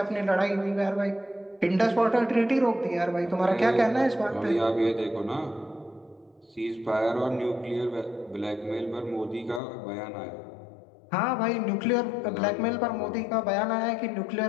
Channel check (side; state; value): right; drops out; at 9.6 s